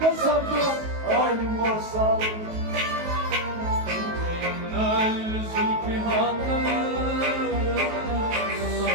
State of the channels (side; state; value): left; late; 19 ms